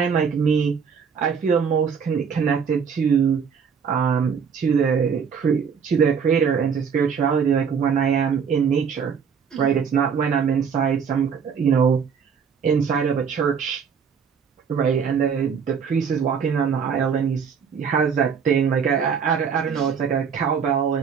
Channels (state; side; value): quieter; left; 6.6 dB